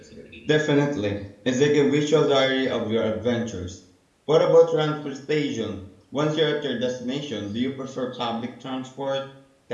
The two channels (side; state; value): both; identical; correlation 1.00